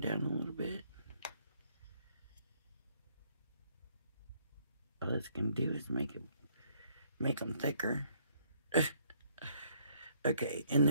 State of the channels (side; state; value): both; inverted; correlation -0.67